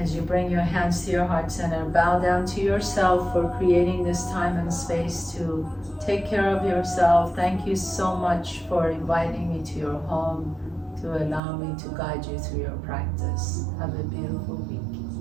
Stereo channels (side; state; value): left; drops out; at 11.4 s